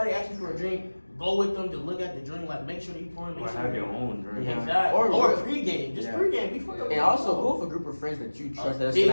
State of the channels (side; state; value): both; inverted; correlation -1.00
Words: asks you for a drink, go with them to look at the drink. Like, make sure that you pouring. Or Make sure have your own drink. Yeah. Exactly. Or- Or pregame. Just Yeah. pregame before the And also go with a group of friends that you trust that's big-